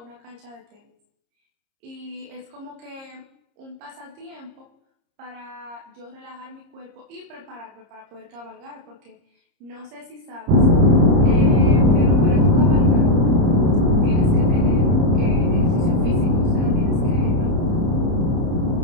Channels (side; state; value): left; late; 30 ms